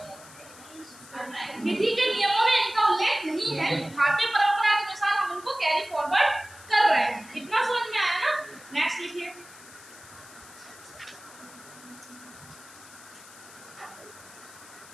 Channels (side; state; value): left; noise; hiss, 20 dB below the sound